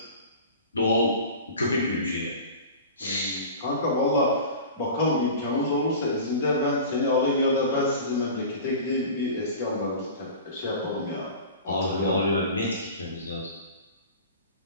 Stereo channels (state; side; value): inverted; both; correlation -0.36